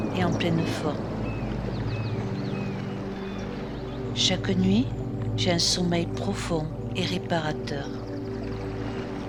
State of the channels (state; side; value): identical; both; correlation 1.00